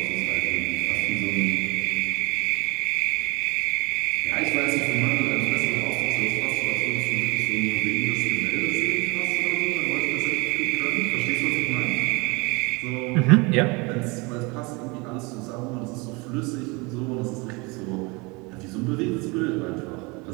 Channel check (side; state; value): left; quieter; 27.0 dB